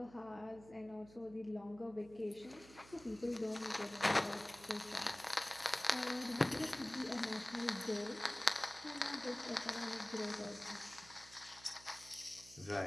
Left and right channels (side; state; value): right; noise; hum, 20 dB below the sound